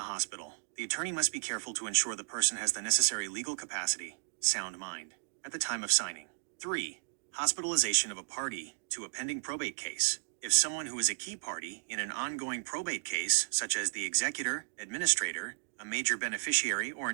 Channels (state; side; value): silent; left; digital silence